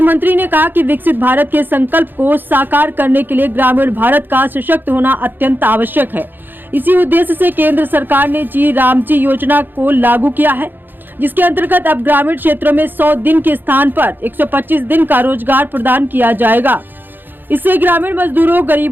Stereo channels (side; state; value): left; late; 0.093 ms